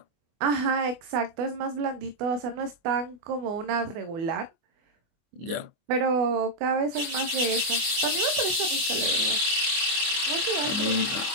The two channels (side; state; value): left; late; 24 ms